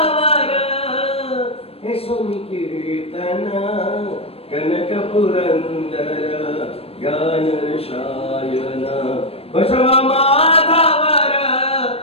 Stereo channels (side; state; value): right; late; 0.28 ms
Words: यशोनि कीर्तन, कनक पुरंदर ज्ञान रसायन। बसवा माधवर